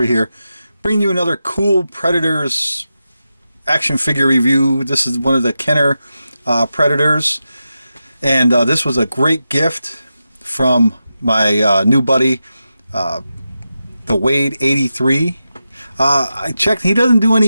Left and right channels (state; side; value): inverted; both; correlation -0.90